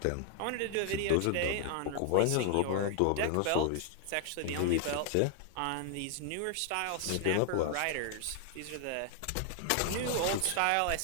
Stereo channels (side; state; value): both; different; correlation 0.00